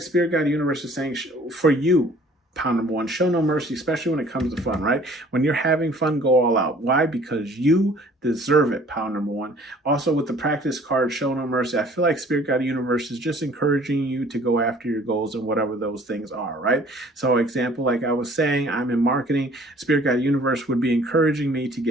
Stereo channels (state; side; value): normal; both; correlation 0.54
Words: Spirit Guide Universe is saying, for you, pound number 1, show no mercy, especially when it comes to fun, right? When you're having fun, go all out. Why? Because you deserve it, pound number 1. Also, with the practice card, show no mercy, I feel like Spirit Guide Universe is just encouraging you to go after your goals and whatever those things are, right? So example, like I was saying, I'm in marketing. Spirit Guide Universe would be encouraging me to